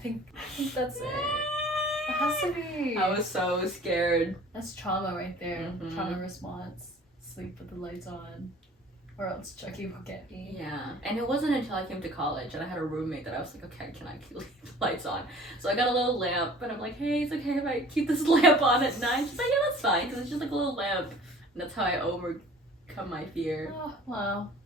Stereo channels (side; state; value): both; normal; correlation 0.48